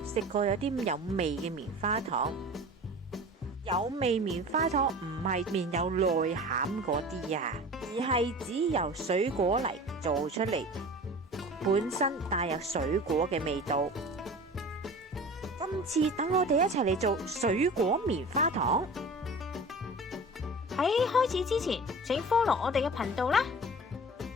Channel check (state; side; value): normal; both; correlation 0.38